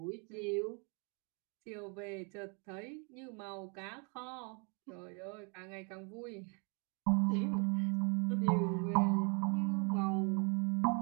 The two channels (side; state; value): left; quieter; 35.3 dB